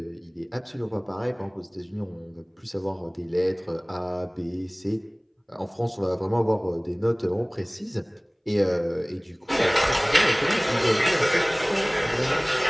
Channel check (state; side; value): identical; both; correlation 1.00